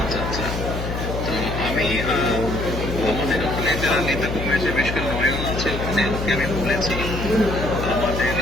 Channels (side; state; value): left; noise; hum, 4 dB below the sound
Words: আচ্ছা। তো আমি আমাদের ওখানে যারা নেতা কর্মী আছে, বিশেষ করে নয়ন আছে, ওখানে ওকে আমি বলেছি। আমাদের